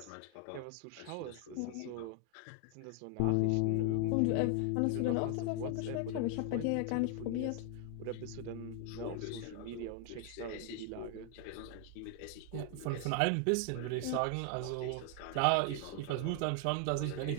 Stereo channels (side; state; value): both; different; correlation 0.00